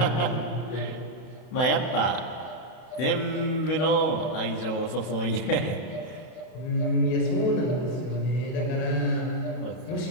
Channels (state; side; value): late; right; 32 ms